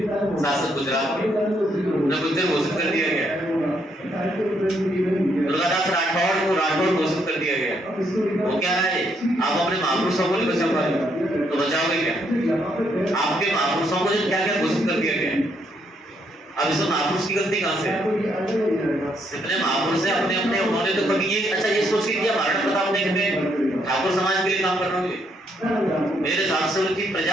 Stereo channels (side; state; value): both; normal; correlation 0.74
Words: शासक गुजरात के, उन्हें गुज्जर घोषित कर दिया गया। दुर्गादास राठौड़ को राठौड़ घोषित कर दिया गया। वो क्या है, आप अपने महापुरुषों को नहीं बचा पाए तो बचाओगे क्या? आपके महापुरुषों को क्या क्या घोषित कर दिया गया। अब इसमें महापुरुष की गलती कहाँ से है? जितने महापुरुष है अपने अपने उन्होंने तो कभी ये अच्छा ये सोच के किया महाराणा प्रताप ने ठाकुर समाज के लिए काम करना होंगे, मेरे हिसाब से उनकी